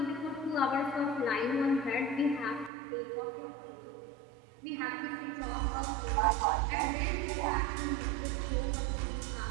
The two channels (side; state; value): left; drops out; at 2.7 s